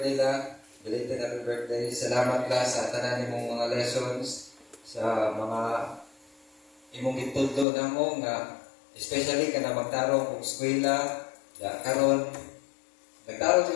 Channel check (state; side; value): drops out; right; at 7.7 s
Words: la. Belated happy birthday. Salamat la sa tanan nimong mga lessons, sa mga imong gitudlo na mo nga, especially ka na magtarong kung eskwela, karon nagtarong